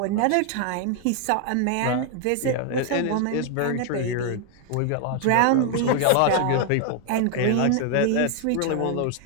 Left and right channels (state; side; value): different; both; correlation 0.00